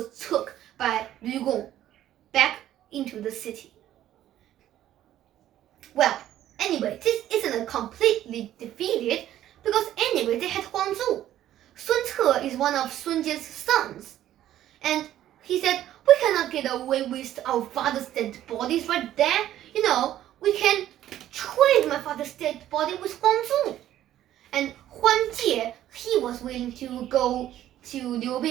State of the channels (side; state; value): left; quieter; 12.5 dB